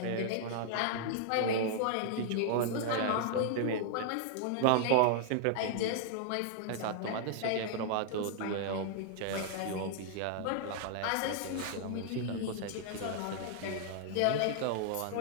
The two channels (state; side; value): different; both; correlation -0.01